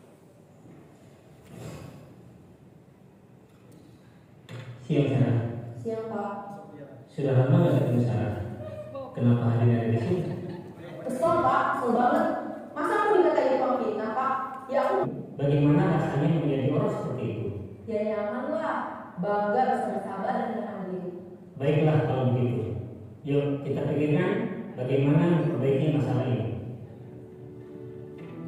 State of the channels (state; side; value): identical; both; correlation 1.00